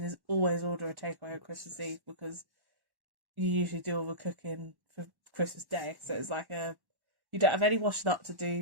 is always order a takeaway on Christmas Eve, because you usually do all the cooking for Christmas Day. So it's like you don't have any washing up to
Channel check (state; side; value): late; left; 1.1 ms